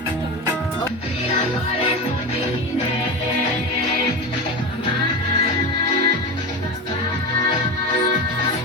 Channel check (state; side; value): normal; both; correlation 0.22